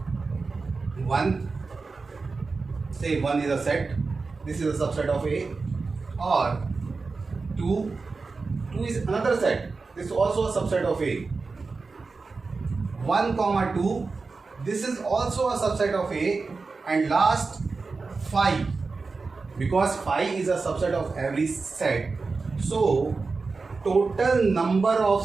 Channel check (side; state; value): left; quieter; 4.2 dB